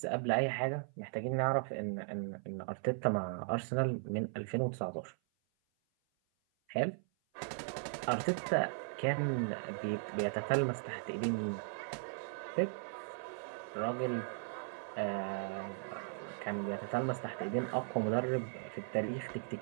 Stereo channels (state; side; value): silent; left; 53 dB below the other